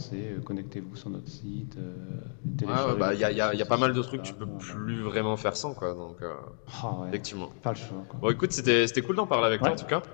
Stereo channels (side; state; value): right; silent; digital silence